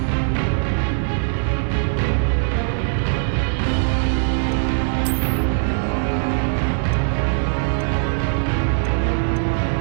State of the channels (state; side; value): silent; left; 64 dB below the other